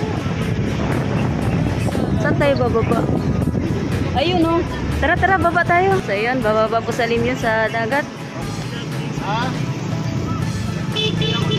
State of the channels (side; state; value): both; identical; correlation 1.00